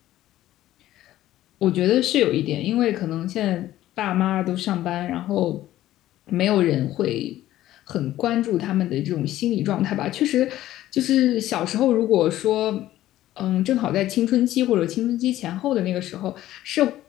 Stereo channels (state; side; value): quieter; right; 14.1 dB